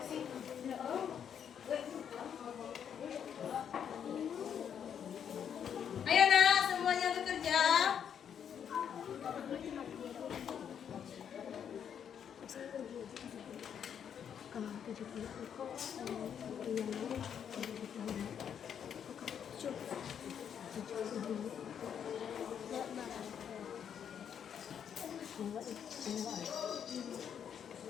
Ayo nak, semuanya bekerja.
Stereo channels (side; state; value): right; quieter; 8.3 dB